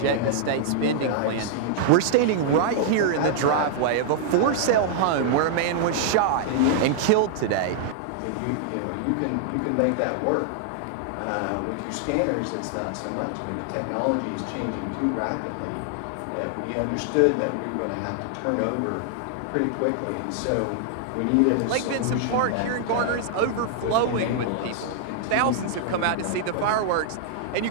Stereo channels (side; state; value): both; different; correlation -0.01